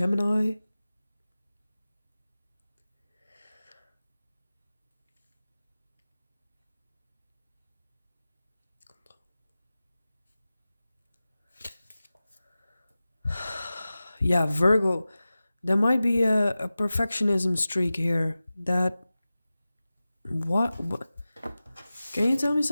Yeah, Virgo. There might be a perfectionism streak here. That what? Can you tell me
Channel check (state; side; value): inverted; both; correlation -0.96